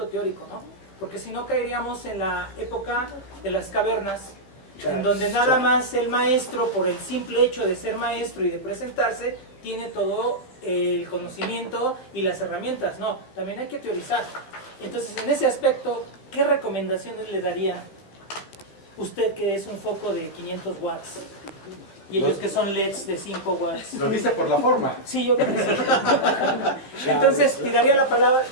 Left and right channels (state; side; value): late; right; 15 ms